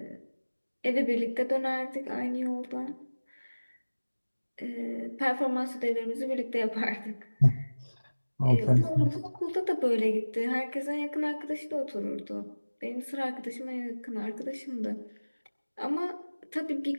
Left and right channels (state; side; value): inverted; both; correlation -1.00